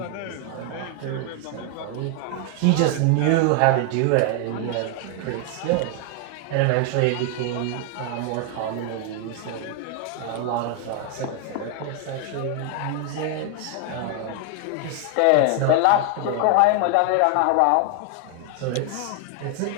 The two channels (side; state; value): both; different; correlation 0.00